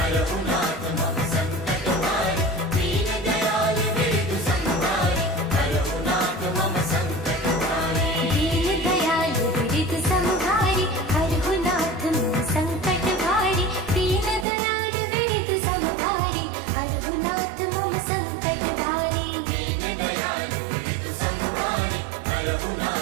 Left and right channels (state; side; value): drops out; left; at 14.5 s